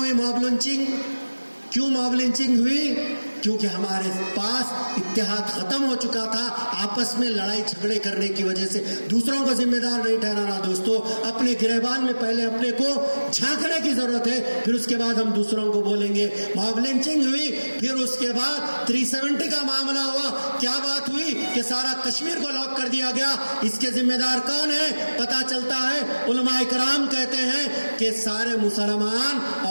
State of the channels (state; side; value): inverted; both; correlation -1.00